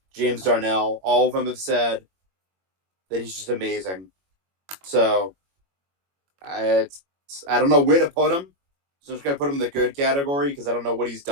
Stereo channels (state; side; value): late; left; 21 ms